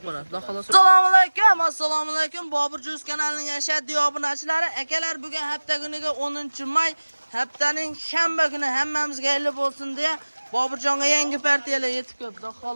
bo'ladi. Assalomu alaykum, assalomu alaykum. Bobur Juz kanalining ashaddiy obunachilari, akalar, bugun hafta kuniga 10-may, haftaning shanba kuni hammamizga xayr bo'lsin deya Boburjonga yangi partiyalar yetib keldi.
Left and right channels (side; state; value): both; inverted; correlation -1.00